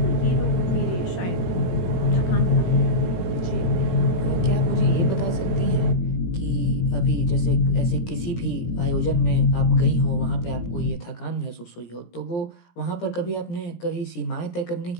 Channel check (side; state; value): right; late; 17 ms